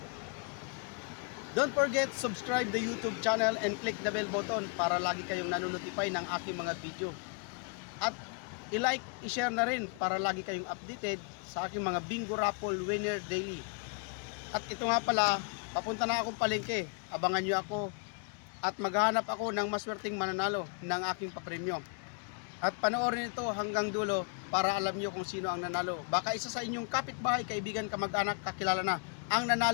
Don't forget subscribe the YouTube channel and click the bell button para lagi kayong nanonotify ng aking mga video. At i-like, i-share na rin para lagi kayong updated sa aking mga bingo raffle winner daily. At ito nga pala, papunta na akong palengke. Abangan nyo ako at maghahanap ako ng maswerteng mananalo ng aking papremyo. At panoorin ito hanggang dulo para alam nyo kung sino ang nanalo. Baka isa sa inyong kapitbahay, kaibigan, kamag-anak, kakilala na ang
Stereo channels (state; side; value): quieter; right; 38.8 dB